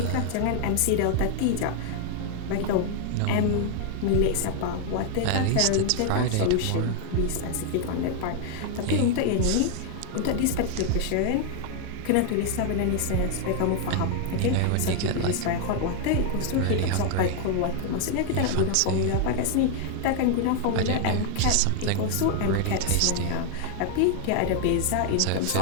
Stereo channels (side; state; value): both; different; correlation 0.00